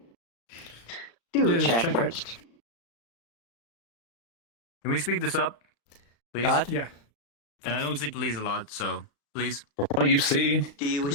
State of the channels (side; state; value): right; late; 35 ms